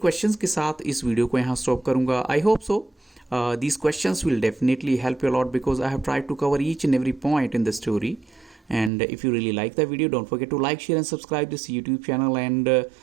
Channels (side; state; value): left; drops out; at 8.9 s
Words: के साथ इस वीडियो को यहाँ स्टॉप करूँगा। I hope so these questions will definitely help you a lot because I have tried to cover each and every point in the story. And if you really like the video, don't forget to like, share and subscribe this YouTube channel. And